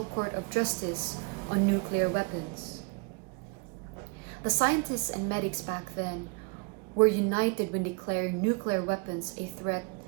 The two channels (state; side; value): quieter; left; 30.6 dB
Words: Court of Justice on nuclear weapons. The scientists and medics back then were united when declaring nuclear weapons a threat